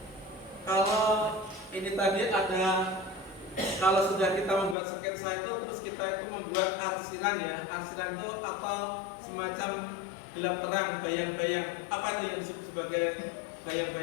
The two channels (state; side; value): drops out; right; at 4.8 s